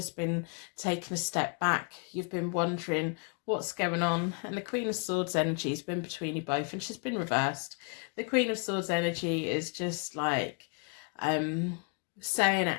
been taking a step back. You've been wondering what's going on, and the Queen of Swords energy has been between you both, and she's been reversed. The Queen of Swords energy is just like saying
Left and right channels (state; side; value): quieter; right; 37.6 dB